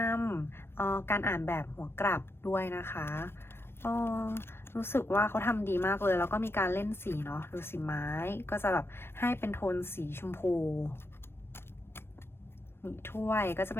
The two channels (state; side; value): late; right; 0.12 ms